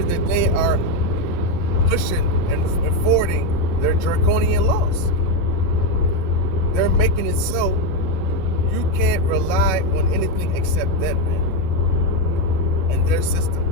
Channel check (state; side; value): late; right; 11 ms